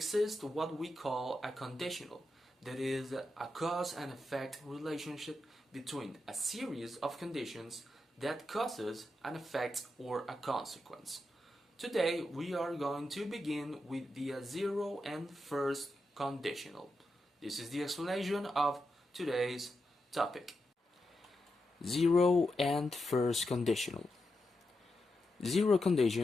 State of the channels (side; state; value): both; normal; correlation 0.87